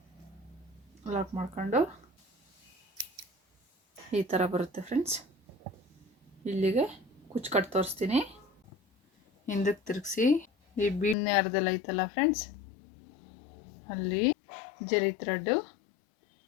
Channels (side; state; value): right; drops out; at 11.2 s